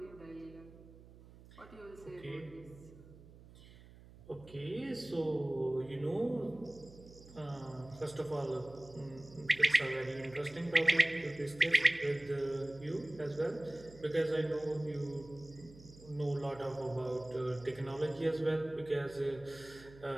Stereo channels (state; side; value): noise; right; hum, 20 dB below the sound